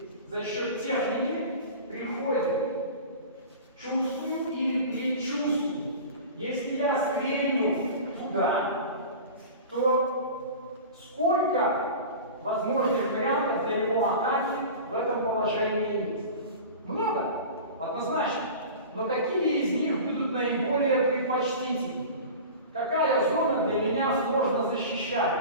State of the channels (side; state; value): both; inverted; correlation -0.35